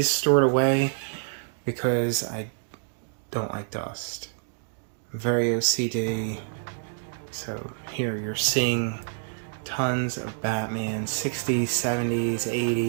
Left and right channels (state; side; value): silent; left; digital silence